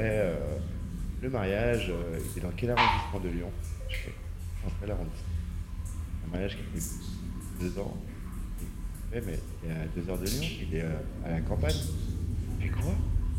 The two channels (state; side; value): identical; both; correlation 1.00